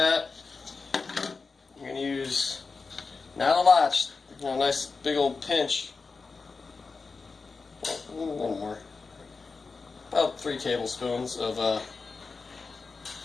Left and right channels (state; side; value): quieter; right; 4.4 dB